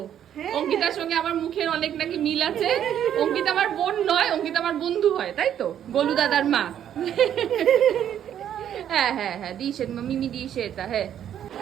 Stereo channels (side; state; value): left; quieter; 10.0 dB